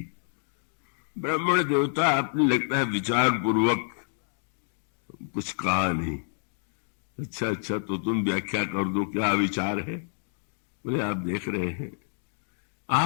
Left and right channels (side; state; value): right; silent; digital silence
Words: ब्राह्मण देवता आपने लगता है विचार पूर्वक कुछ कहा नहीं। अच्छा तो तुम व्याख्या कर दो, क्या विचार है? बोले आप देख रहे हैं,